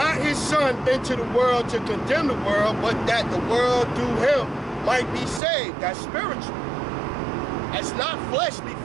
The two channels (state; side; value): drops out; left; at 5.4 s